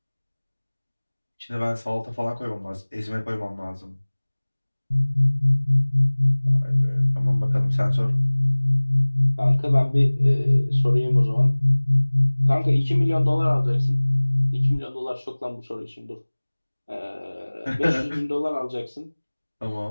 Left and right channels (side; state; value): both; inverted; correlation -1.00